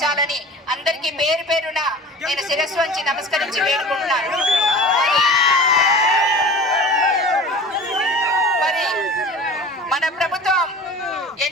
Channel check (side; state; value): both; normal; correlation 0.39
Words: అందరికీ పేరు పేరున నేను శిరస్సు వంచి నమస్కరించి వేడుకుంటున్నాను. మరి మన ప్రభుత్వం